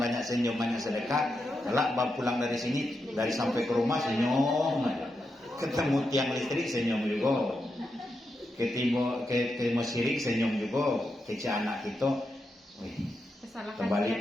senyum, banyak sedekah. Kalau pulang dari sini, dari sampai ke rumah senyum aja. Ketemu tiang listrik senyum juga. Ketemu sirik senyum juga. Kece anak kita,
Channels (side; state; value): both; normal; correlation 0.86